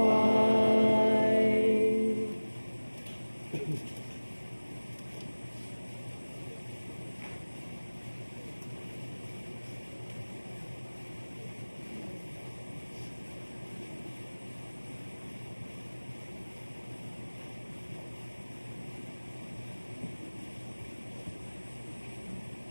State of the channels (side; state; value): both; inverted; correlation -1.00